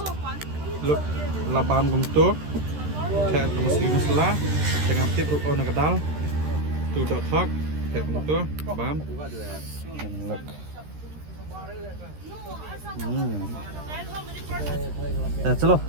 Look, laban gumto. Kayak muslim lah. Dengan tip ruko nak kedal. Tu dot talk. Kayak gumto. Bam. And look. Chalo,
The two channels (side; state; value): left; late; 13 ms